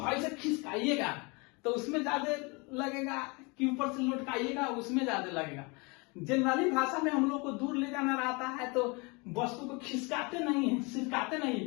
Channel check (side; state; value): right; quieter; 28.8 dB